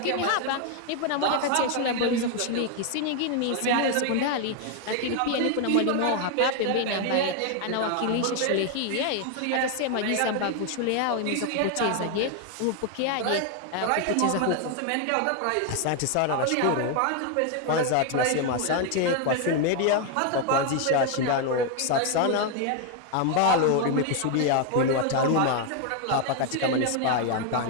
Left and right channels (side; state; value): both; different; correlation 0.01